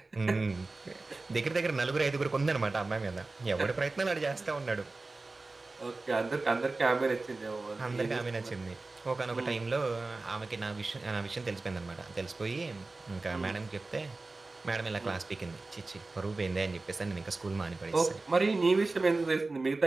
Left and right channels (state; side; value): quieter; left; 3.5 dB